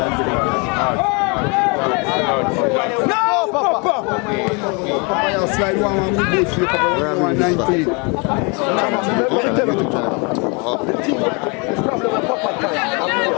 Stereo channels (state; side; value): quieter; right; 31.9 dB